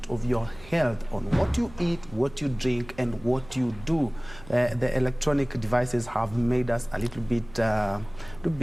of your health on what you eat, what you drink, and what you do. The electronic devices have made us a little bit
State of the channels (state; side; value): noise; right; hum, 20 dB below the sound